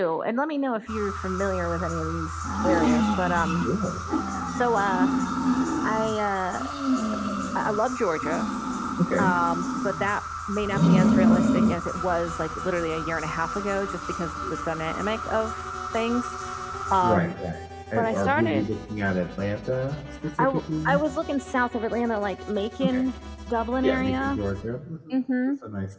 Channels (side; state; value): both; identical; correlation 1.00